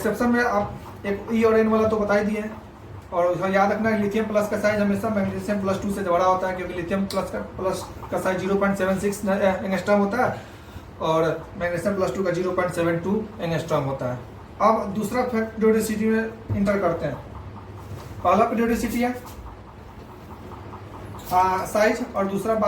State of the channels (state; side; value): identical; both; correlation 1.00